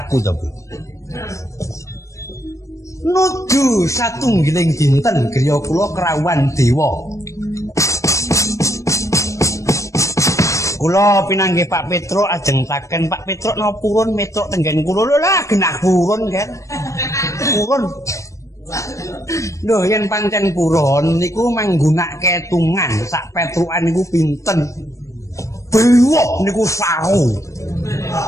to, Bu. Nuju satunggiling dinten griya kula krawuhan dewa. Kula pinanggih Pak Petruk ajengtaken Pak Petruk napa purun metruk tenggen kula lho lah genah purun kan. Purun. Lho yen pancen purun niku manggunake tungan sak petrukan niku pinten. Bewok niku saru.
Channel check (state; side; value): late; right; 0.15 ms